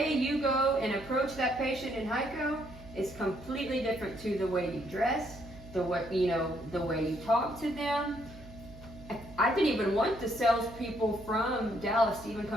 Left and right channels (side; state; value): right; noise; hum, 18 dB below the sound